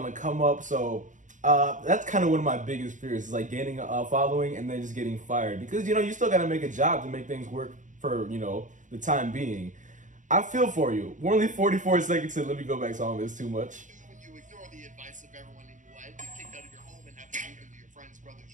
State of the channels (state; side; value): late; left; 0.37 ms